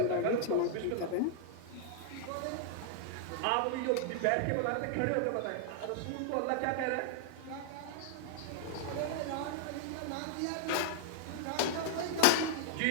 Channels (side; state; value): both; different; correlation -0.01